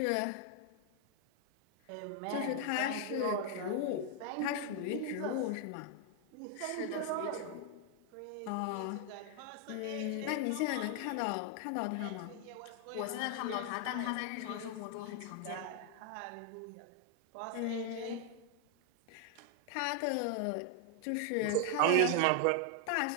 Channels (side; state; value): both; different; correlation 0.00